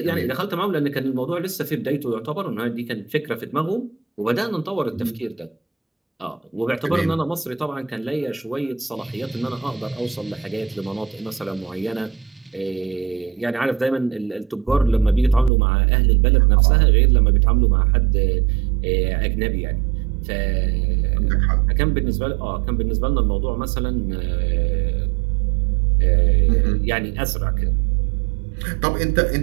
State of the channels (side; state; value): left; drops out; at 15.5 s